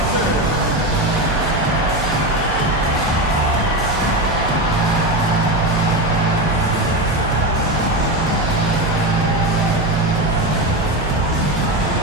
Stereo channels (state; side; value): noise; right; hum, 9 dB below the sound